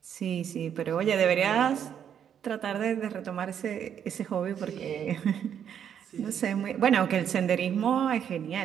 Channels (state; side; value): quieter; left; 8.8 dB